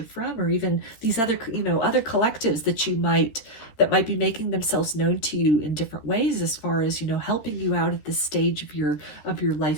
from, or even these other, you know, other collectives that might be making themselves known to you in different ways, as far as, you know, helping you out at this stage of your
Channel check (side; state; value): right; late; 13 ms